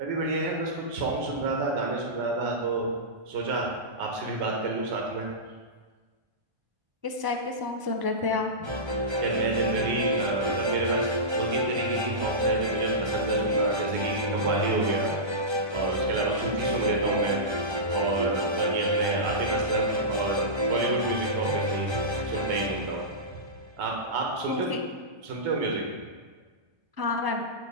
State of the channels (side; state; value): left; late; 1.3 ms